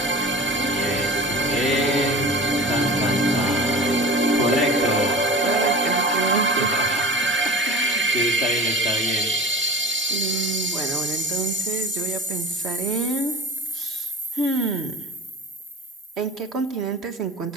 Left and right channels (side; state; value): both; normal; correlation 0.36